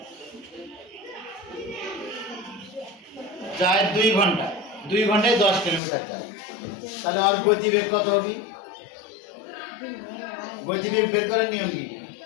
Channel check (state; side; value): drops out; right; at 5.8 s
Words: যায় 2 ঘন্টা। 2 ঘন্টায় 10 কিলোমিটার যায়। তাহলে আর গতিবেগ কত হবে? গতিবেগ বের করার নিয়ম কি?